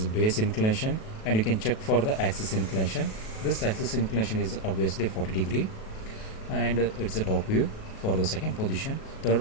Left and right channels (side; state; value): right; late; 37 ms